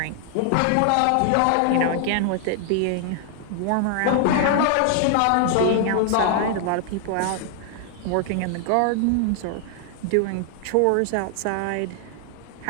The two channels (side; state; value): both; different; correlation 0.00